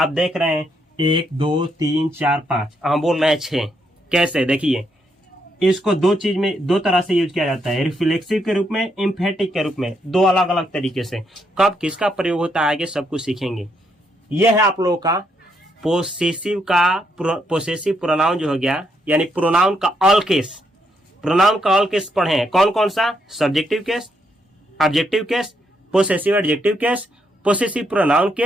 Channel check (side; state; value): both; normal; correlation 0.76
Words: देख रहे हैं 1 2 3 4 5, हम बोल रहे हैं 6। कैसे? देखिए इसको दो तरह से यूज किया जाता है, रिफ्लेक्सिव के रूप में, इम्फेटिक के रूप में, दो अलग अलग तरीके से। कब किसका प्रयोग होता है आगे सब कुछ सीखेंगे। यह है आप लोगों का पोसेसिव प्रोनाउन जो हो गया, यानी प्रोनाउन का ऑल केस। प्रोनाउन का ऑल केस पढ़े हैं, कौन कौन सा? Subjective case, objective case, possessive adjective case, possessive pronoun